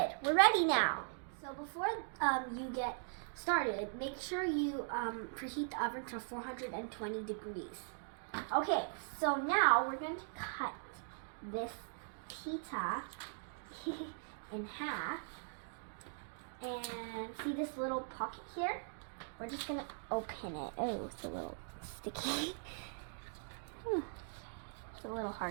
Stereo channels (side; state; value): left; silent; digital silence